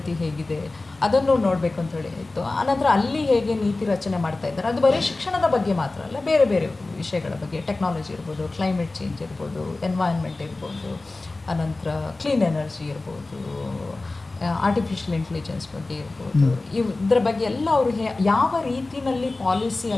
ಹೇಗಿದೆ, ಅದನ್ನು ನೋಡಬೇಕು ಅಂತೇಳಿ ಇತ್ತು. ಆನಂತರ ಅಲ್ಲಿ ಹೇಗೆ ನೀತಿ ರಚನೆ ಮಾಡ್ತಾ ಇದ್ದಾರೆ, ಅದು ಬರೀ ಶಿಕ್ಷಣದ ಬಗ್ಗೆ ಮಾತ್ರ ಅಲ್ಲ, ಬೇರೆ ಬೇರೆ ವಿಷಯಗಳ ಬಗ್ಗೆ, ಟೆಕ್ನಾಲಜಿ ಇರ್ಬೋದು, ಕ್ಲೈಮೇಟ್ ಚೇಂಜ್ ಇರ್ಬೋದು, ಎನ್ವೈರ್ನ್ಮೆಂಟ್ ಇರ್ಬೋದು, ಅನಂತರ ಕ್ಲೀನ್ ಎನರ್ಜಿ ಇರ್ಬೋದು, ಆರ್ಟಿಫಿಷಿಯಲ್ ಇಂಟೆಲಿಜೆನ್ಸ್ ಬಗ್ಗೆ ಇರ್ಬೋದು, ಇದರ ಬಗ್ಗೆ ಎಲ್ಲ ಅವರು ಯಾವ ರೀತಿಯಲ್ಲಿ ಪಾಲಿಸಿ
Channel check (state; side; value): quieter; right; 3.2 dB